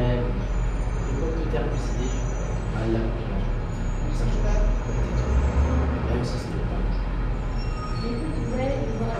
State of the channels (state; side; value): identical; both; correlation 1.00